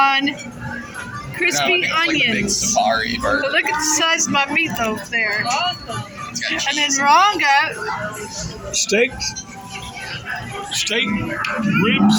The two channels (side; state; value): both; identical; correlation 1.00